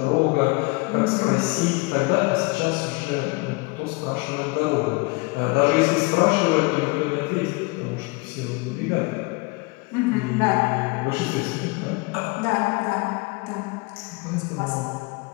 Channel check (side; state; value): right; quieter; 26.3 dB